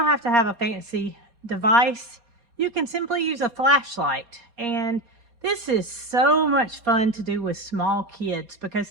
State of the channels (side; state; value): left; late; 4.2 ms